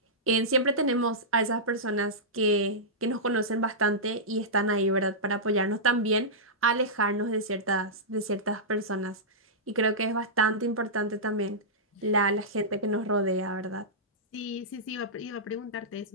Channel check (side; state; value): both; normal; correlation -0.14